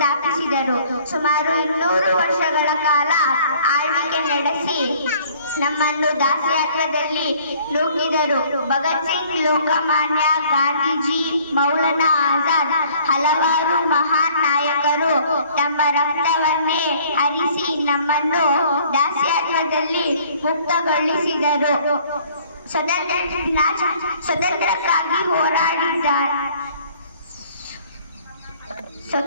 ಸುಮಾರು 200 ವರ್ಷಗಳ ಕಾಲ ಆಳ್ವಿಕೆ ನಡೆಸಿ ನಮ್ಮನ್ನು ದಾಸ್ಯತ್ವದಲ್ಲಿ ನೂಕಿದರು. ಭಗತ್ ಸಿಂಗ್, ಲೋಕಮಾನ್ಯ, ಗಾಂಧೀಜಿ, ಮೌಲಾನಾ ಆಜಾದ್, ಹಲವಾರು ಮಹಾನ್ ನಾಯಕರು ತಮ್ಮ ರಕ್ತವನ್ನೇ ಹರಿಸಿ ನಮ್ಮನ್ನು ದಾಸ್ಯತ್ವದಲ್ಲಿ ಮುಕ್ತಗೊಳಿಸಿದರು. ಸ್ವತಂತ್ರಕ್ಕಾಗಿ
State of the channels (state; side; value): inverted; both; correlation -0.56